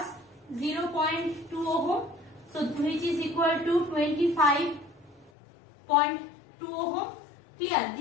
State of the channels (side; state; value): right; drops out; at 5.3 s